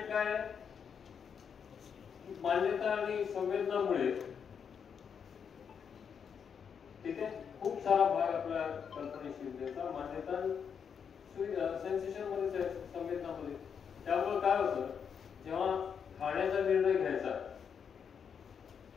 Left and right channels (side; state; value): right; quieter; 7.1 dB